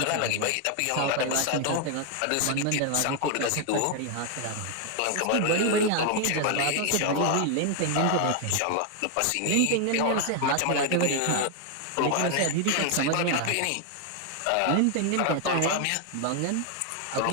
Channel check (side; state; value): both; different; correlation 0.00